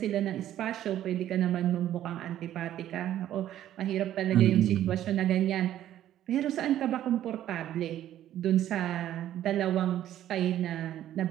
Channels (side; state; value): left; quieter; 12.1 dB